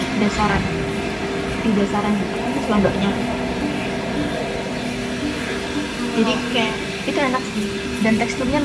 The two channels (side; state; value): both; identical; correlation 1.00